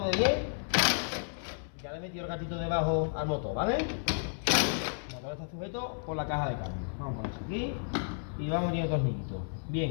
de 10. Ya le he metido el gatito debajo al motor, ¿vale? El motor está sujeto por la caja de cambio. Vamos a poner aquí y vamos metiendo tornillitos.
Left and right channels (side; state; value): right; silent; 56 dB below the other